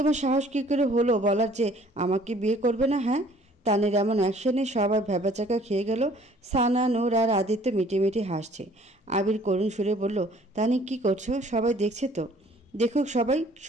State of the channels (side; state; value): both; normal; correlation 0.56